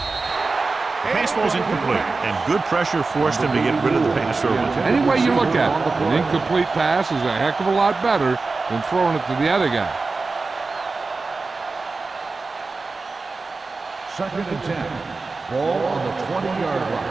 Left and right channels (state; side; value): quieter; left; 3.9 dB